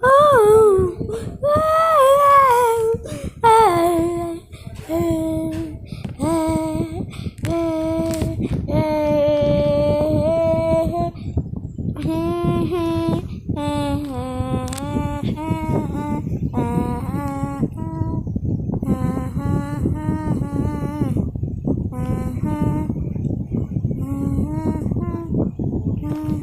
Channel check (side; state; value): both; identical; correlation 1.00